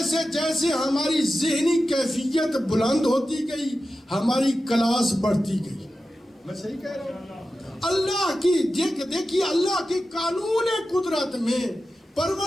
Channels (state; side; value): normal; both; correlation 0.93